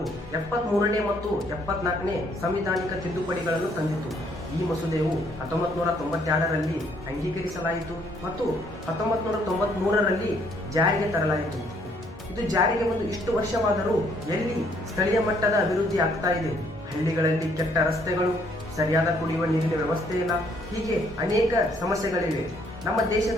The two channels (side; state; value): both; normal; correlation 0.67